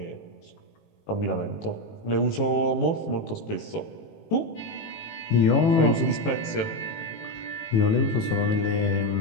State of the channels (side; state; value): right; late; 18 ms